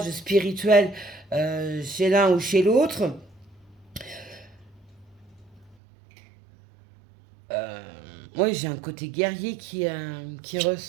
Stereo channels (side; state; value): left; drops out; at 5.8 s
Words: spirituels chez l'un ou chez l'autre. Moi, j'ai un côté guerrier qui